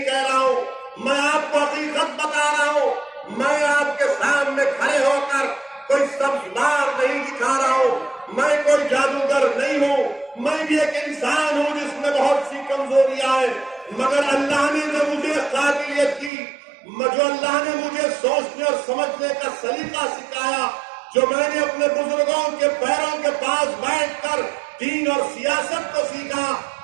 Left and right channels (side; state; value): left; drops out; at 16.3 s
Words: کہہ رہا ہوں، میں آپ کو حقیقت بتا رہا ہوں۔ میں آپ کے سامنے کھڑے ہو کر کوئی سبزدار نہیں دکھا رہا ہوں، میں کوئی جادوگر نہیں ہوں، میں بھی ایک انسان ہوں جس میں بہت سی کمزوریاں ہیں، مگر اللہ نے جو مجھے قابلیت دی، جو اللہ نے مجھے سوچنے اور سمجھنے کا سلیقہ سکھایا، جو میں نے اپنے بزرگوں کے پیروں کے پاس بیٹھ کر دین اور سیاست کو سیکھا،